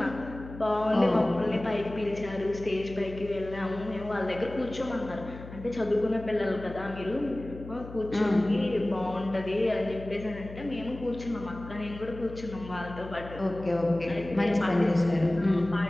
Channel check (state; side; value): noise; left; hum, 14 dB below the sound